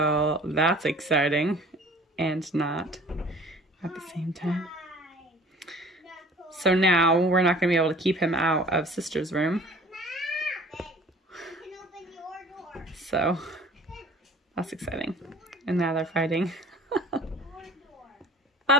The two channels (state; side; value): normal; both; correlation 0.48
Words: that's exciting and not at the same time. So now we're not going to be able to keep him out of sister's room. So that's exciting. And now they're fighting.